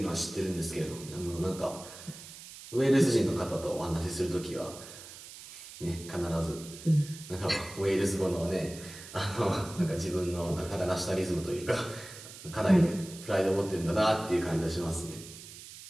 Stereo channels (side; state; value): right; noise; hiss, 15 dB below the sound